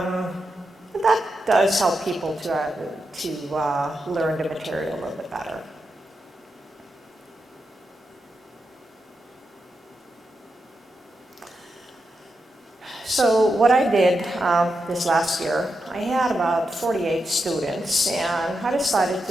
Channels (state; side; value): normal; both; correlation 0.87